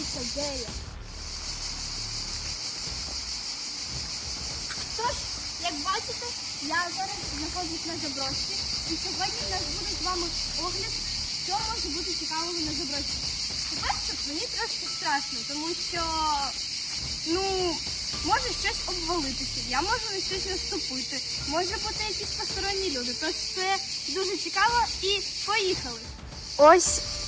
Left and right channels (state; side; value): identical; both; correlation 1.00